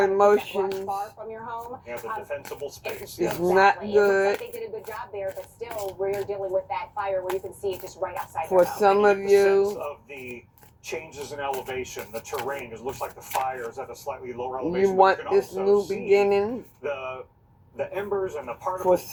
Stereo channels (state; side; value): identical; both; correlation 1.00